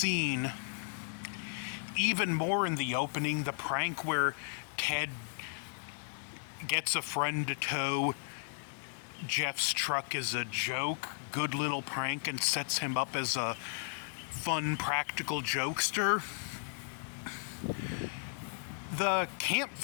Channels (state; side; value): silent; right; digital silence